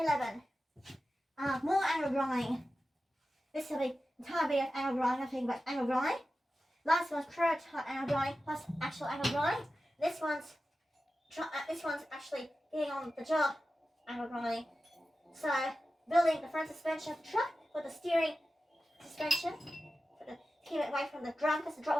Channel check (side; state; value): both; normal; correlation 0.93